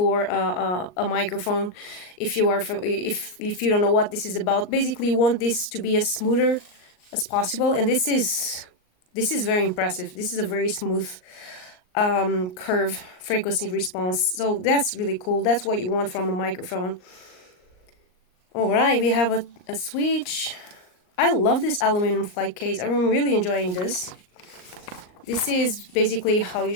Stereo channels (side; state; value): right; late; 39 ms